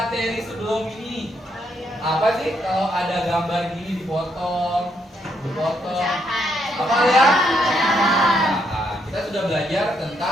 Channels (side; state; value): both; normal; correlation 0.75